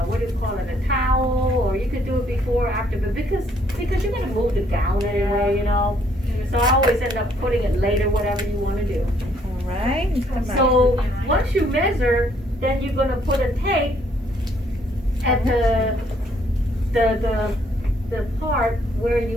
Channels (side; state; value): both; normal; correlation 0.67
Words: what do you call it, a towel, or you could do it before, or after, but because you're gonna move the gown anyway, you know. So I always end up putting it later, whatever you wanna do. All right. Come back. So, once you measure, then you're gonna put a tape at the part where